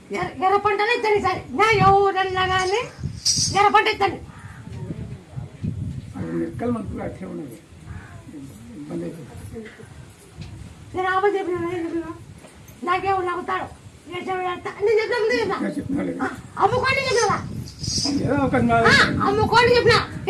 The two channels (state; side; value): identical; both; correlation 1.00